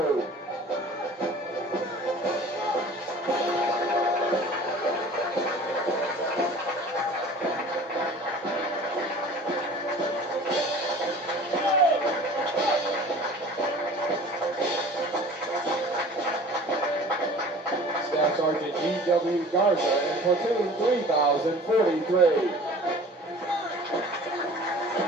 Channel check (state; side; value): normal; both; correlation 0.44